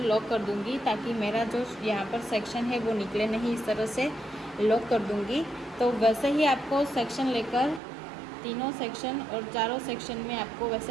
लॉक कर दूँगी ताकि मेरा जो यहाँ पर सेक्शन है वो निकले नहीं। इस तरह से लॉक कर दूँगी। तो वैसे ही आपको सेक्शन लेकर तीनों सेक्शन और चारों सेक्शन में आपको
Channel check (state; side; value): drops out; left; at 7.8 s